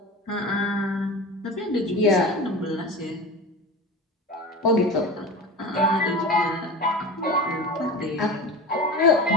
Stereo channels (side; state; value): both; normal; correlation 0.31